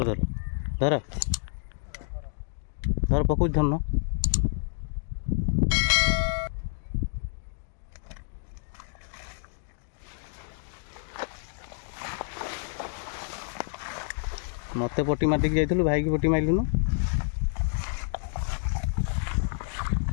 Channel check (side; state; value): right; silent; digital silence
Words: धर धर धर पकड़ धरन मत पटी मातिक जाइलु भाई की पटी मारिलुनु